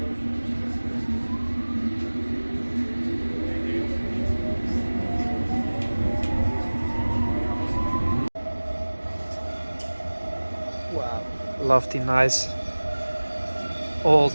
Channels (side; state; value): both; inverted; correlation -1.00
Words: Wow, love the nice